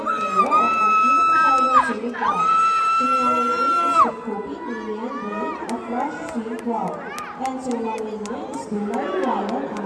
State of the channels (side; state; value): both; identical; correlation 1.00